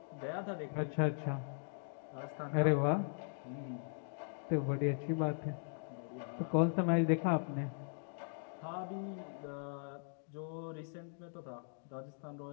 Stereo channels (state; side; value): silent; right; digital silence